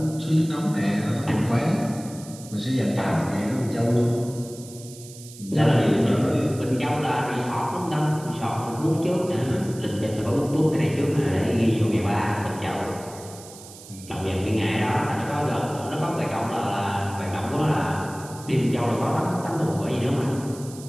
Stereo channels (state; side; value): noise; right; hiss, 17 dB below the sound